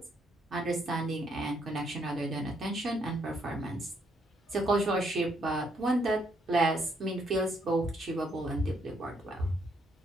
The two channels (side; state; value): both; normal; correlation 0.72